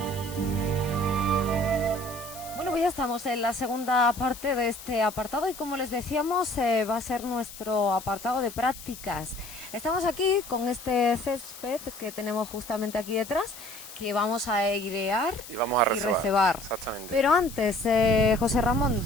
Pues ya estamos en la segunda parte de este apartado y como les decíamos va a ser nuestro apartado de prácticas. Estamos aquí con este césped que tenemos justamente aquí detrás, que vamos a airear y vamos a recebar. Exactamente. Pero antes, José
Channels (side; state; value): left; noise; hiss, 14 dB below the sound